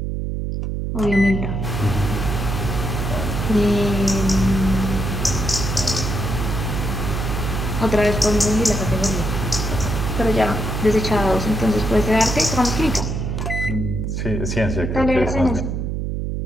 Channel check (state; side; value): noise; right; hum, 2 dB below the sound